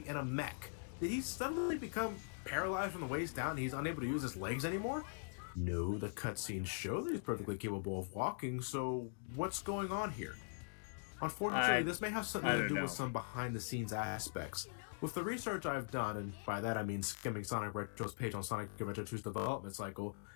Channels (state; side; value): silent; right; digital silence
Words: in a mech? Did he suddenly become paralyzed from the waist down and he's unable to use his legs anymore? No, the cutscenes show that he's perfectly capable of walking, so what's going on here? Unfortunately, this may have something to do with some behind-the-scenes aspects. With the research I've done, and by that I mean skimming Sonic Retro's page on Sonic Adventure 2's development cycle,